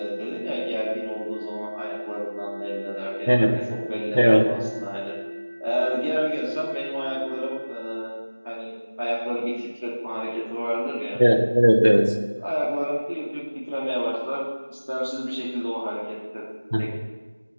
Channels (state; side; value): inverted; both; correlation -1.00